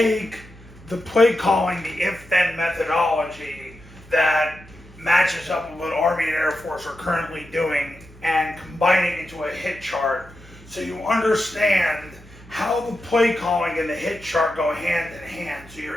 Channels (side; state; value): both; normal; correlation 0.89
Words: the Playcalling, the if-then methodology that matches up with what Army and Air Force are currently doing and combine it into a hit chart so you understand how the Playcalling and the hit chart go hand in hand so